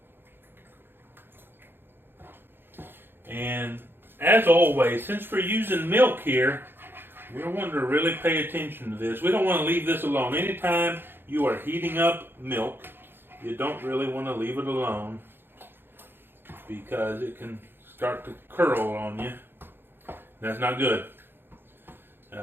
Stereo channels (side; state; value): left; late; 0.10 ms